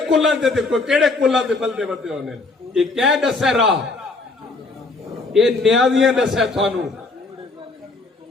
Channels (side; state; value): right; quieter; 3.5 dB